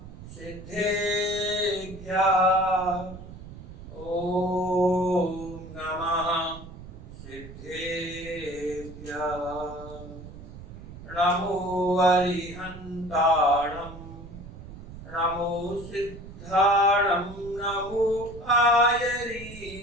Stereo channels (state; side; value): noise; right; rumble, 14 dB below the sound